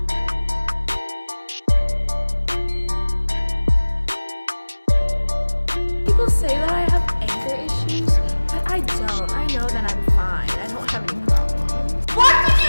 People say that I have anger issues, but I don't. I know that I'm fine. I don't have any problems. What did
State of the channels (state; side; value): inverted; both; correlation -1.00